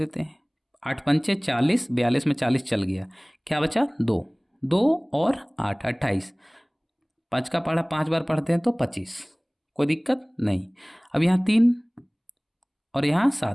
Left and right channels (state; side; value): identical; both; correlation 1.00